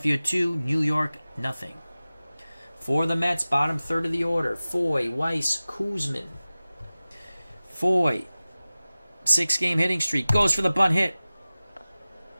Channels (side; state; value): both; inverted; correlation -0.97